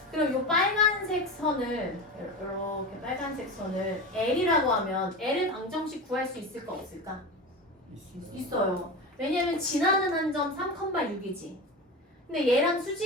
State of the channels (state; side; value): normal; both; correlation 0.26